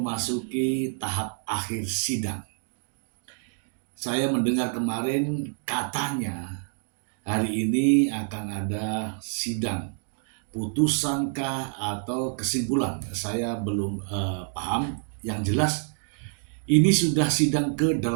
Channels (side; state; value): left; silent; 60 dB below the other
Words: tahap akhir sidang. Saya mendengar kemarin katanya hari ini akan ada sidang, putusankah atau kesimpulan. Saya belum paham. Yang jelas ini sudah sidang